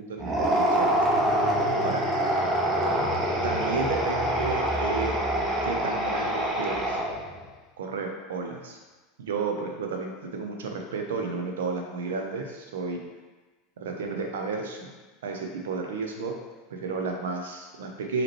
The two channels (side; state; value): both; normal; correlation 0.26